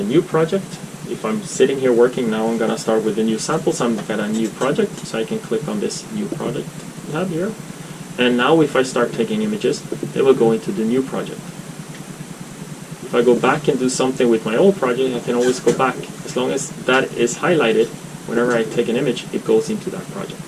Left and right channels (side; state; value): both; identical; correlation 1.00